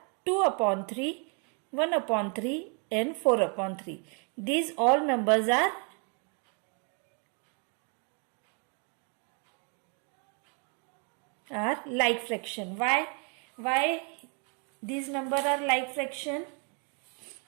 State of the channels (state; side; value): quieter; left; 38.0 dB